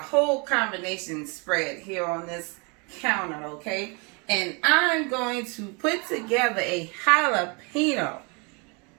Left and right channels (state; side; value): quieter; left; 31.8 dB